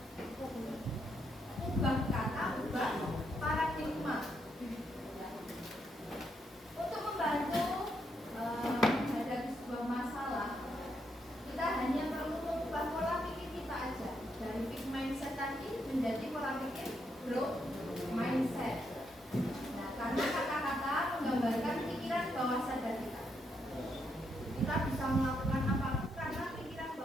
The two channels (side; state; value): both; normal; correlation 0.78